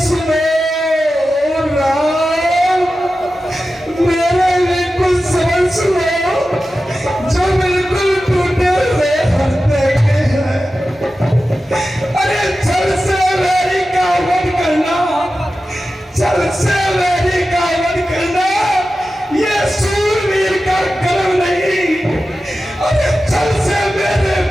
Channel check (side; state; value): both; normal; correlation 0.93